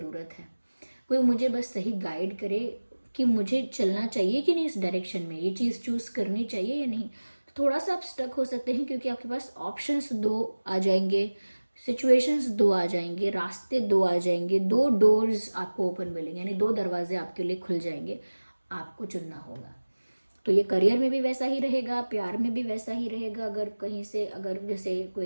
है, कोई मुझे बस सही गाइड करे कि मुझे चलना चाहिए कि नहीं इस डायरेक्शन में, ये चीज़ चूज़ करनी चाहिए या नहीं। तो थोड़ा सा आप स्टक हो सकते हैं क्योंकि आपके पास ऑप्शंस दो आ जाएंगे, सिचुएशंस दो आ जाएंगे, रास्ते दो आ जाएंगे, दो डोर्स आपको ओपन मिलेंगे, यानी दो दरवाजे आपके लिए खुल जाएंगे, आपको चुनना होगा। तो ये करियर में भी वैसा ही रहेगा, प्यार में भी वैसा ही रहेगा, अगर कहीं से अगर जैसे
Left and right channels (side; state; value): both; inverted; correlation -1.00